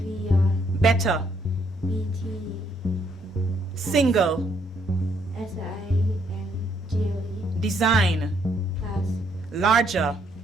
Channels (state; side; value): normal; both; correlation 0.71